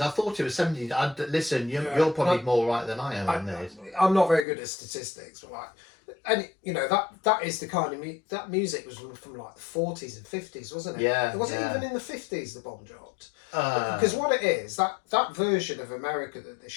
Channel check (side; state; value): right; drops out; at 4.5 s